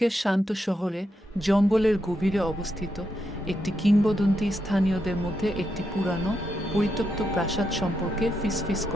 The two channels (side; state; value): both; normal; correlation 0.83